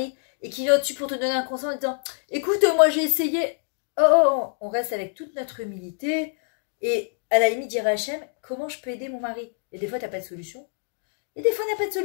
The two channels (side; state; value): right; silent; 61 dB below the other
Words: et qu'il vient au-dessus pour te donner un conseil en disant, écoute, moi j'ai essayé. Oh, on reste avec toute notre humilité et à la limite dire à Hachem, comment je peux aider mon mari? Et des fois, tu n'as pas de solution. Et des fois, on n'a pas de